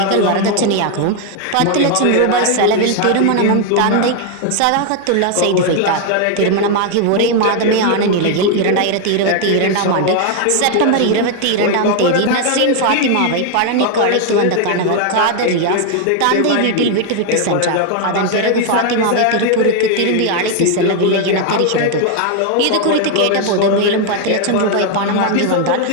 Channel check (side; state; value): both; different; correlation 0.01